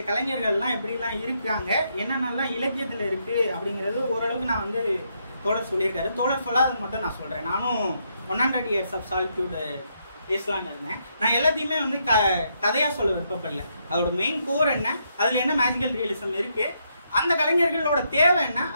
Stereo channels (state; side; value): inverted; both; correlation -0.77